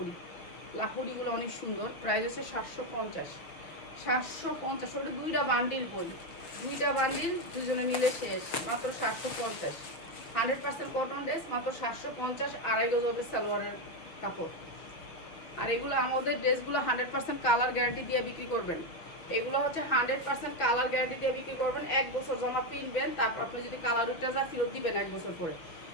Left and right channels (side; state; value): right; late; 6.4 ms